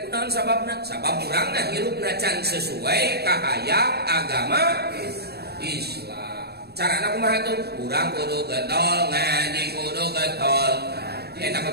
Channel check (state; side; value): late; left; 0.47 ms